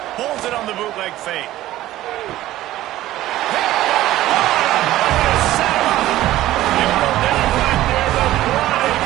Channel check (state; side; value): quieter; left; 15.0 dB